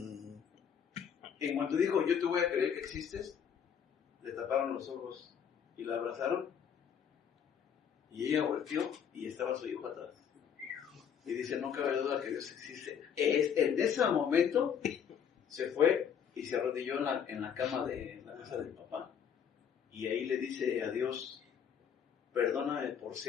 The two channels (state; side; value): quieter; right; 7.9 dB